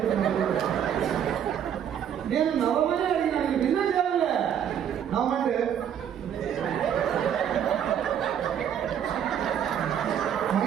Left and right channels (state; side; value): quieter; left; 9.1 dB